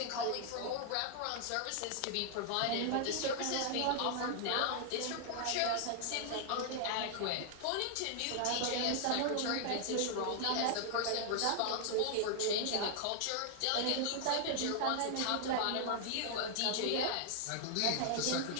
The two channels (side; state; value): both; different; correlation 0.00